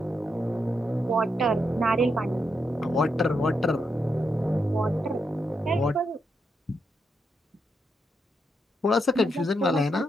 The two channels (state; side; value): normal; both; correlation 0.82